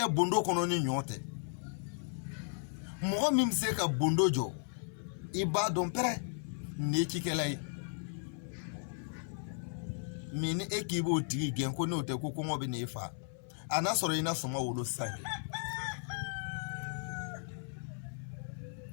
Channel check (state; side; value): silent; right; 54 dB below the other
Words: bondo kono ni nyote mo mi se ka bondo jo i ba don pere ni kikelai mini ekibo tigi gen ko no te ko ko ngobe ni fa ana soro ina suma wolo sange